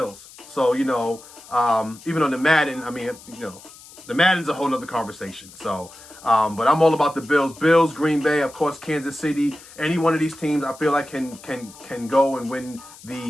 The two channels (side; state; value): left; noise; hiss, 20 dB below the sound